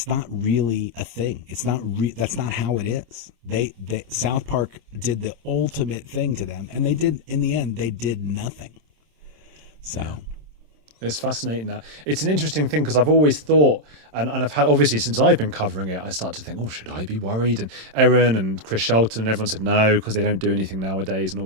not really a thing. It's not. That's not how it is. They South Park did the ultimate thing to them, and they did, in the end, they did nothing. So. Yeah. It's fascinating. That it's an interesting thing, because I've always thought, and I've had, obviously since I've been covering it, I start to think, oh, should I be worried? And Erin and Chris Shelton and everyone said no, because they don't do anything nowadays and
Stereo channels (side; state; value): left; late; 27 ms